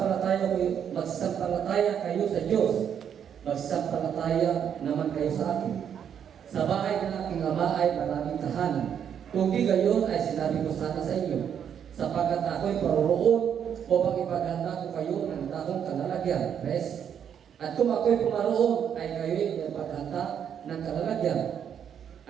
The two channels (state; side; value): quieter; left; 8.5 dB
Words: kayo sa Diyos. Magsampalataya naman kayo sa akin. Sa bahay ng aking ama ay maraming tahanan. Kung di gayon ay sinabi ko sana sa inyo, sapagkat ako'y paroroon upang ipaghanda ko kayo ng takong kalalagyan. Rest. At kung ako'y pumaroon ay kayo'y ipaghanda ng kalalagyan.